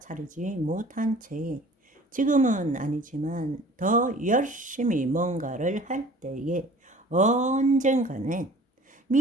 못한 채 지금은 아니지만 더 열심히 뭔가를 할 때에 언젠가는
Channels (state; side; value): normal; both; correlation 0.48